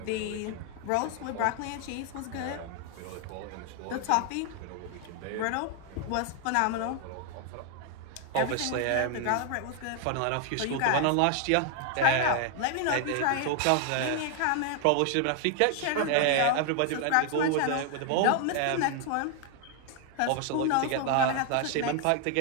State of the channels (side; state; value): both; different; correlation 0.00